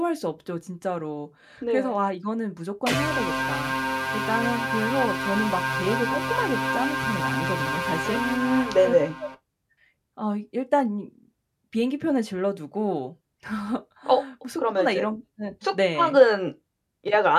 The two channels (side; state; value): both; identical; correlation 1.00